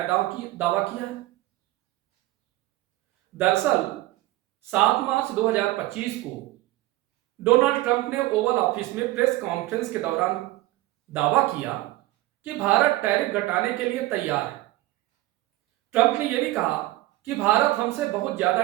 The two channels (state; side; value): quieter; left; 17.5 dB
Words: दावा किया है। दरअसल 7 मार्च 2025 को डोनाल्ड ट्रंप ने ओवल ऑफिस में प्रेस कॉन्फ्रेंस के दौरान दावा किया कि भारत टैरिफ घटाने के लिए तैयार है। ट्रंप ने यह भी कहा कि भारत हमसे बहुत ज्यादा